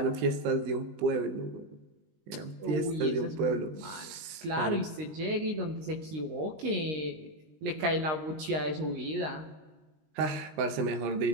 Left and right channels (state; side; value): late; left; 19 ms